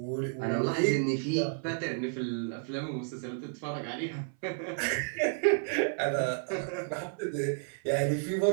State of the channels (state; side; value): silent; left; 57 dB below the other